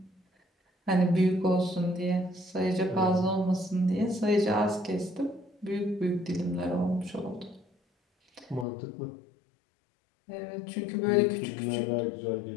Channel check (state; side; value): drops out; right; at 8.7 s